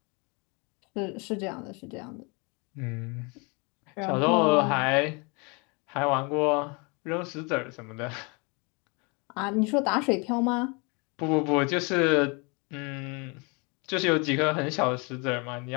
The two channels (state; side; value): quieter; right; 31.0 dB